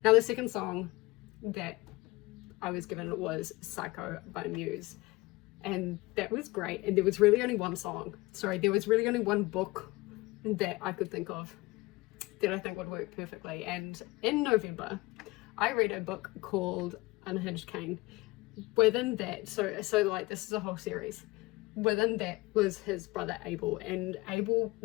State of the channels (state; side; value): quieter; right; 21.8 dB